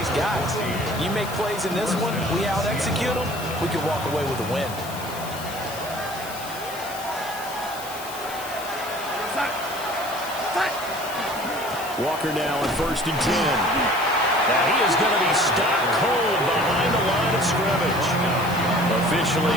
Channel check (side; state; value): left; noise; hiss, 13 dB below the sound